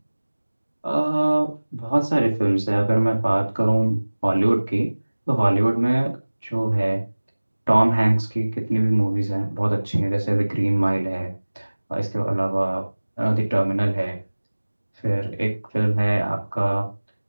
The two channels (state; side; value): inverted; both; correlation -1.00